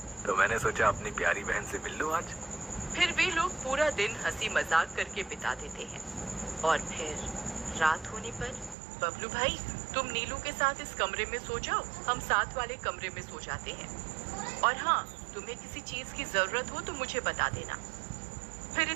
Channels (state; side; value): drops out; left; at 8.8 s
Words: तो मैंने सोचा अपनी प्यारी बहन से मिल लूं आज। फिर वे लोग पूरा दिन हंसी मजाक करके बिता देते हैं। और फिर रात होने पर, बबलू भाई तुम नीलू के साथ इस कमरे में सो जाओ, हम साथ वाले कमरे में सो जाते हैं। और हाँ, तुम्हें किसी चीज की जरूरत हो तो मुझे बता देना। फिर